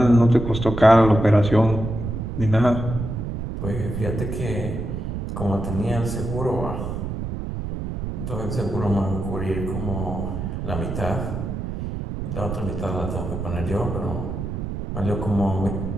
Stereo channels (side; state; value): right; noise; rumble, 5 dB below the sound